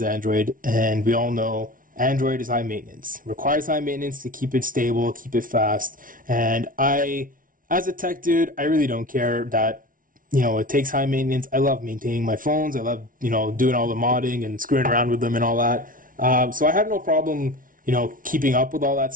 Android, and we all know Android is high maintenance. Requires high maintenance to keep it stable, keep it fast. And as a tech dude, I really don't care that, it takes high maintenance. I love maintaining my phones. I love, doing all the modding and screwing around with them and all that. So I have no problem, keeping up with all that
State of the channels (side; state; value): left; late; 0.39 ms